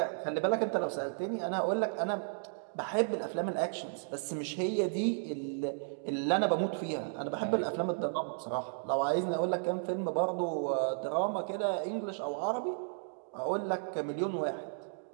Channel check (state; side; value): silent; left; digital silence